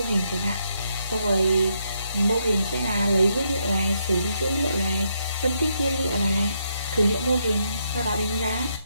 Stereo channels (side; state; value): both; inverted; correlation -0.78